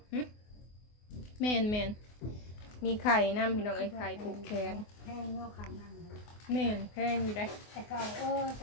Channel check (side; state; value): right; late; 24 ms